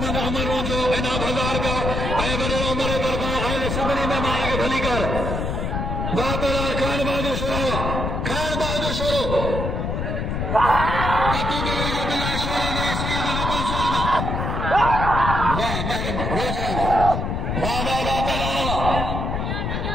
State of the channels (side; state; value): left; noise; rumble, 2 dB below the sound